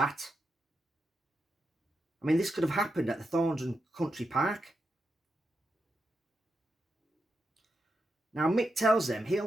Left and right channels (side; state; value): both; normal; correlation 0.86